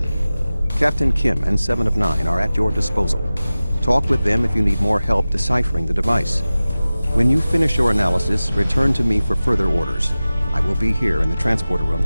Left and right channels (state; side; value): inverted; both; correlation -0.97